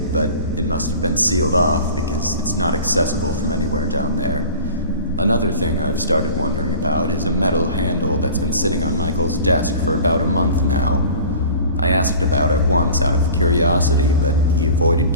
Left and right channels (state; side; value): inverted; both; correlation -0.42